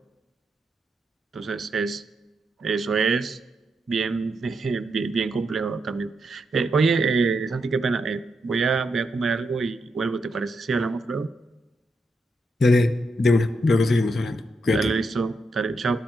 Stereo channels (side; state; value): both; normal; correlation 0.82